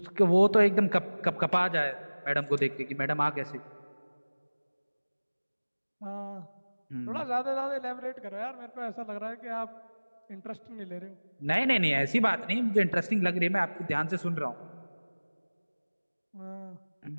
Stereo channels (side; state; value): both; inverted; correlation -1.00